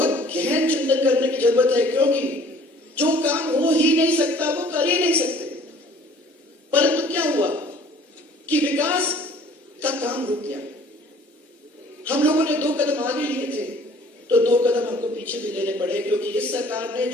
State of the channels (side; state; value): both; normal; correlation 0.53